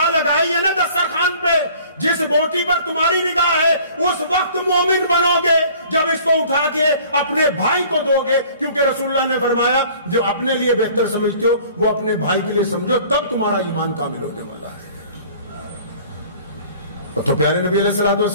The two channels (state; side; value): inverted; both; correlation -0.51